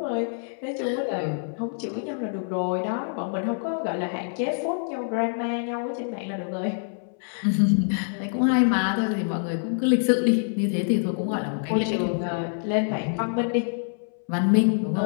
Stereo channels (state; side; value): silent; right; 61 dB below the other